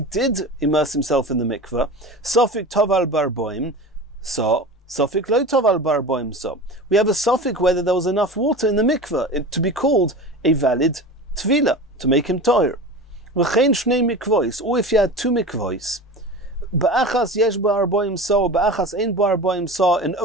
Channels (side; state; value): both; normal; correlation 0.32